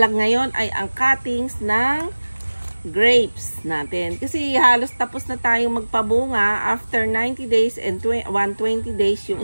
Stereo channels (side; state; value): both; inverted; correlation -1.00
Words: ngayon ay ang cuttings ng grapes natin. Kasi halos tapos na tayong magpabunga after 90 days and 120 days yung